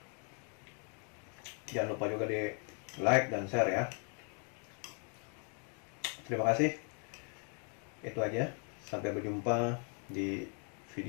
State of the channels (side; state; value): right; quieter; 39.4 dB